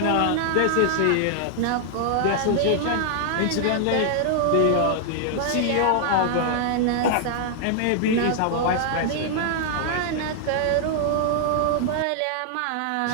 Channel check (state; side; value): different; both; correlation -0.01